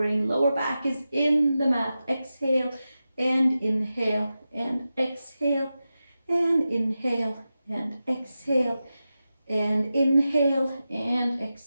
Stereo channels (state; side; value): inverted; both; correlation -0.92